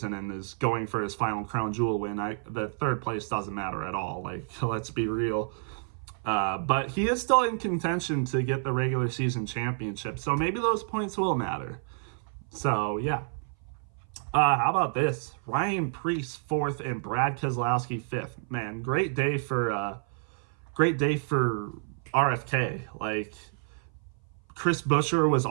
and is going for his final crown jewel win? The third place doesn't matter at all. Like, let's be real. But he is still in contention to get the regular season championship, so maybe those points will matter. So, yeah. How about this? Ryan Preece 4th and Brad Keselowski 5th. Man, great day for RFK. Like, Chris Buescher was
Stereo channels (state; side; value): silent; left; 57 dB below the other